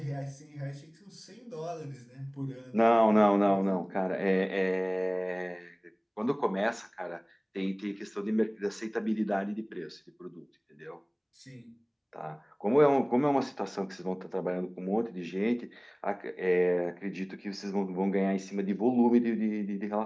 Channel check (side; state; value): both; identical; correlation 1.00